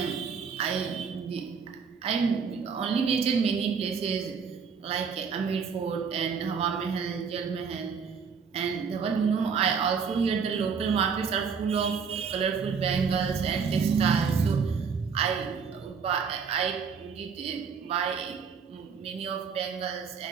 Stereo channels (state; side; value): quieter; left; 6.1 dB